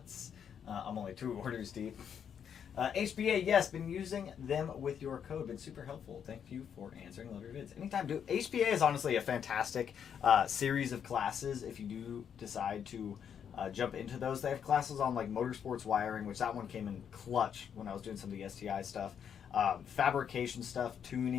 I'm only 2 orders deep. HBA, yes, been using them with your code. Been super helpful. Thank you for answering loader vids. Anytime, dude. HBA is honestly a fantastic series of classes if you do decide to jump into those. They have classes on like motorsports wiring, which that one came in clutch when I was doing some of the STI stuff. Fabrication stuff,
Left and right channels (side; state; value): right; quieter; 8.1 dB